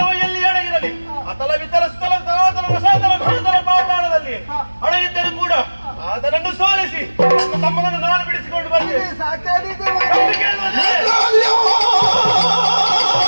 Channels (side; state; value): both; inverted; correlation -1.00